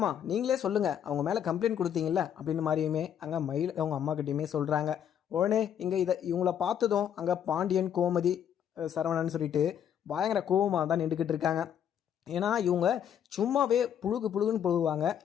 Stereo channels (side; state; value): right; quieter; 9.2 dB